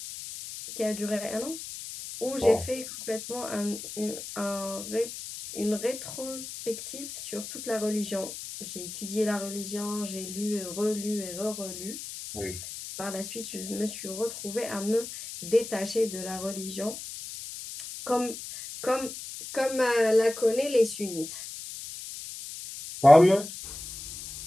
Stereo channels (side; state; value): left; noise; hiss, 10 dB below the sound